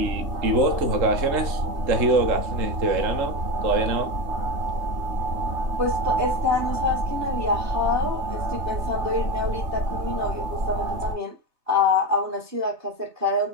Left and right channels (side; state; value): left; late; 3.3 ms